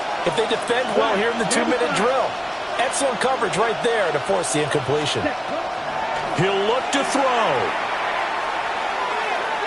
if they defend well here in the 2-minute drill. Excellent coverage right there to force the incompletion. He'll look to throw.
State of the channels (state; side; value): identical; both; correlation 1.00